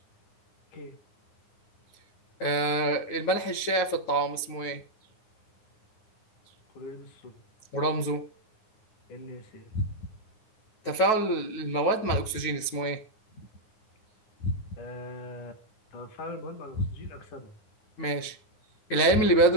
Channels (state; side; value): late; right; 9.2 ms